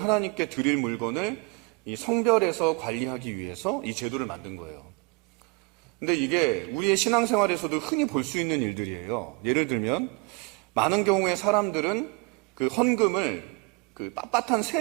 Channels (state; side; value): quieter; left; 27.7 dB